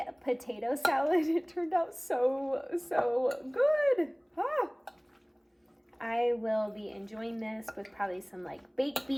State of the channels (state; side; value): identical; both; correlation 1.00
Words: potato salad. It turned out so good. I will be enjoying this with probably some like baked